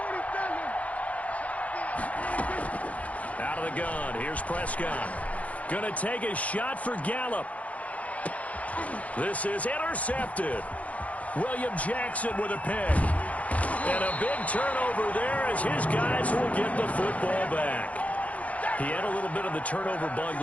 Out of the gun, here's Prescott. Gonna take a shot for Gallup. This is intercepted. William Jackson with a pick. And a big turnover there as his guys will get the football back. He had a little bit of the turnover bug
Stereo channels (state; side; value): late; right; 0.067 ms